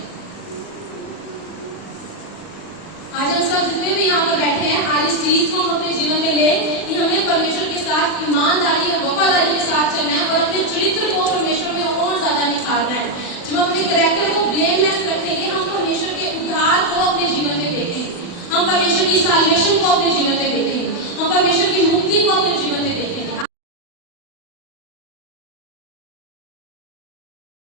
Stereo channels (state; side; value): late; right; 40 ms